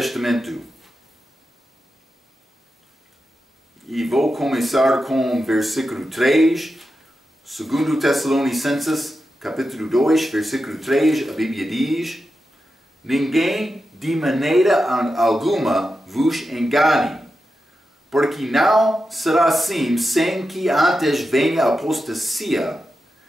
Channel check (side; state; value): both; normal; correlation 0.90